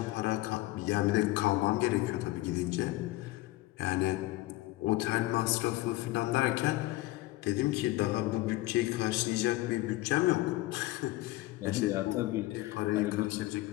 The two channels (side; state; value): right; quieter; 18.3 dB